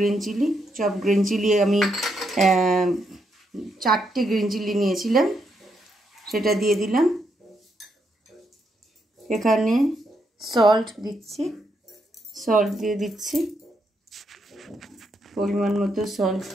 green chilli আমি 4টে গ্রিন চিলি নিয়েছিলাম, সেটা দিয়ে দিলাম। এখানে সল্ট দিয়ে দিচ্ছি, পরিমাণ মতো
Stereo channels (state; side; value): normal; both; correlation 0.79